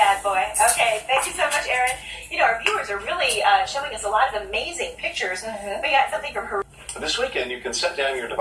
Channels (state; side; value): identical; both; correlation 1.00